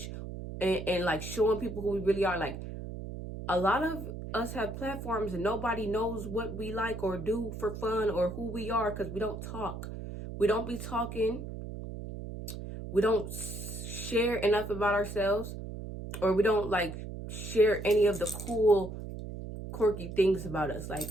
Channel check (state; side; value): noise; right; hum, 8 dB below the sound